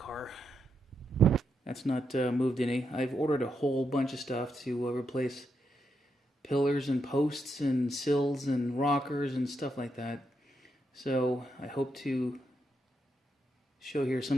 That's not moved any. I've ordered a whole bunch of stuff to replace pillars and posts and sills and rockers and stuff like that. So I hope to show here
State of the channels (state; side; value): normal; both; correlation 0.82